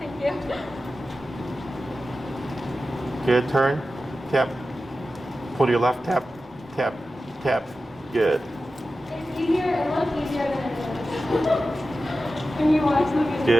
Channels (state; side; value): normal; both; correlation 0.93